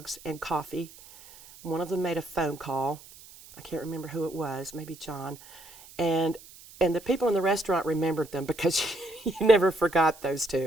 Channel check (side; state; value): right; noise; hiss, 20 dB below the sound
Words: and coffee. One of them made a phone call. I can't remember who it was, maybe John. And the people in the restaurant remembered them because you never forgot those